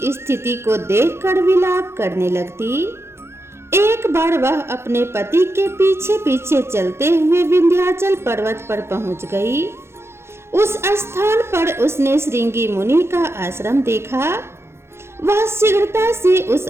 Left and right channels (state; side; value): late; left; 0.12 ms